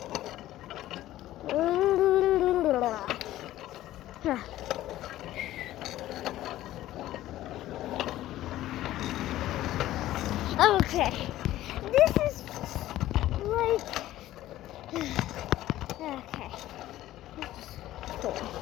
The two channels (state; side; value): quieter; right; 14.6 dB